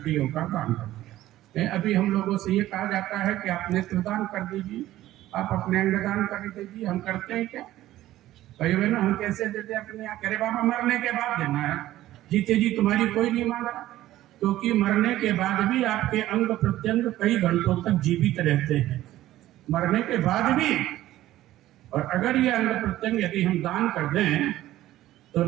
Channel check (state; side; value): quieter; left; 14.7 dB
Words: का दान कर दिया। अभी हम लोगों से ये कहा जाता है कि आप नेत्रदान कर दीजिए, आप अपने अंगदान कर दीजिए। हम करते हैं क्या भाइयों बहनों? हम कैसे देते अपने यहाँ? करे बाबा मरने के बाद देना है, जीते जी तुम्हारी कोई नहीं मांग रहा, क्योंकि मरने के बाद भी आपके अंग प्रत्यंग कई घंटों तक जीवित रहते हैं, मरने के बाद भी। और अगर ये अंग प्रत्यंग यदि हम दान कर दें तो